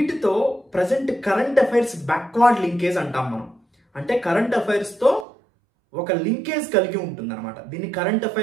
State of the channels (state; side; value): drops out; left; at 5.2 s